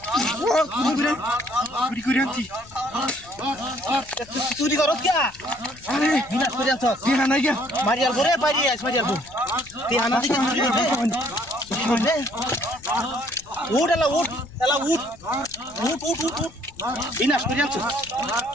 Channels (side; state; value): left; noise; rumble, 23 dB below the sound